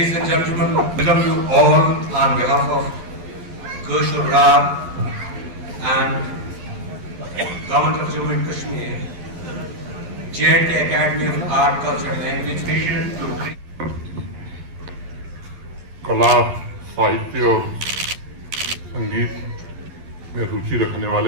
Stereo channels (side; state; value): left; late; 11 ms